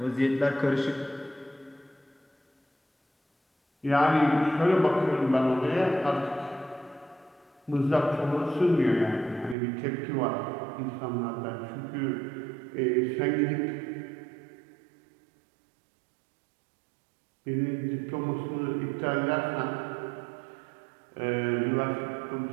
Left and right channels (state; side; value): drops out; left; at 9.6 s